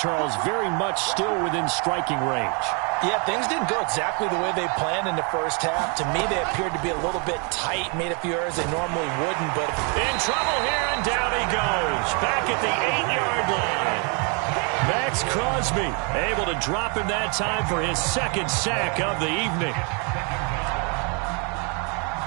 very much still within striking range. Yeah, things didn't go exactly the way they planned in the first half. To me, they appeared to be a little bit tight, made a few errors they normally wouldn't. But in trouble here, and down he goes. Back at the 8-yard line. Max Crosby able to drop him that time for his second sack of the evening.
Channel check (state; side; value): quieter; left; 35.1 dB